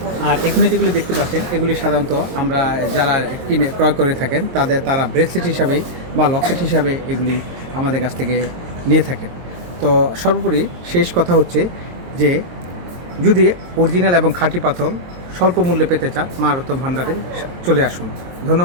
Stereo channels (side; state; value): left; late; 23 ms